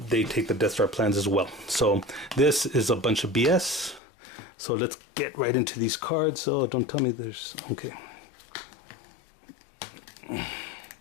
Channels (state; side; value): drops out; right; at 4.0 s